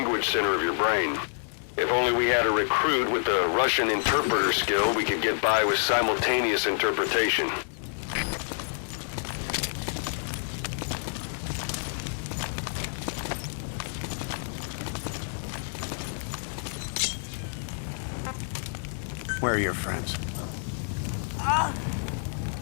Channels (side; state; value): right; silent; digital silence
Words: center of your brain. If only we had a recruit with the Russian interpreter skill, we could get by with simultaneous interpretation. Where are your friends?